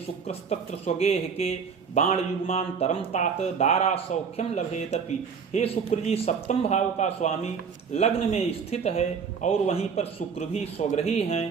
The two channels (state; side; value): quieter; left; 6.2 dB